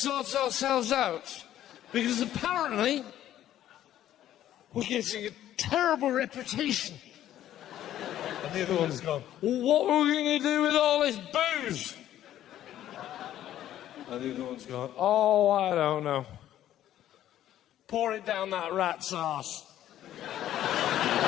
ourselves out because apparently we're getting a terrible reputation. And the other one's gone, well, what are we going to do with all this booze? And the other one's gone, oh, I don't know. Pour it down that rat's arse.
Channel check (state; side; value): quieter; right; 12.2 dB